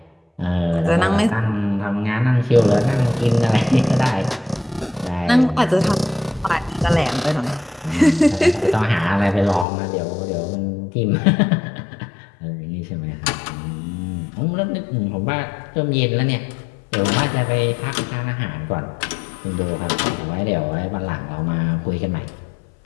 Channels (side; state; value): right; drops out; at 9.7 s